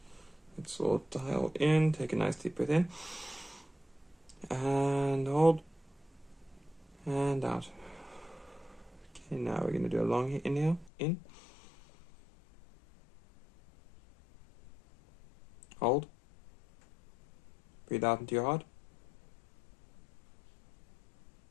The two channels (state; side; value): drops out; right; at 10.9 s